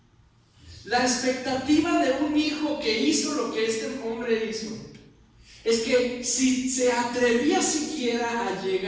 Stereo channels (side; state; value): both; identical; correlation 1.00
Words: La expectativa de un hijo que hizo lo que este hombre hizo es que si se atrevía siquiera a